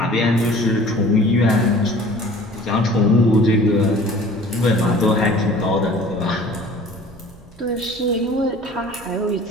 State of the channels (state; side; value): normal; both; correlation 0.47